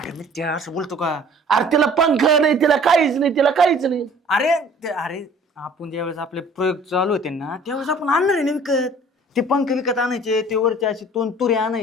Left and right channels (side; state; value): both; normal; correlation 0.51